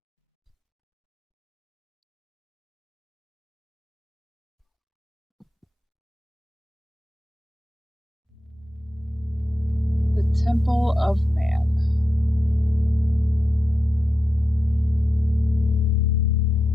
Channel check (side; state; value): both; normal; correlation 0.89